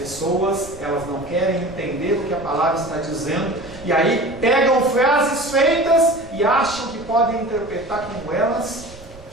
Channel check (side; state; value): right; noise; rumble, 19 dB below the sound